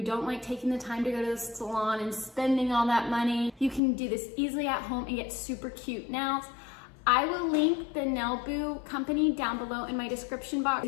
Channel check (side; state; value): right; drops out; at 3.8 s